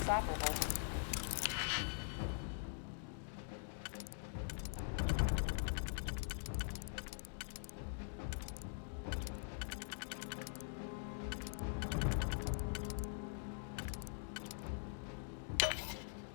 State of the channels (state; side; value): silent; right; digital silence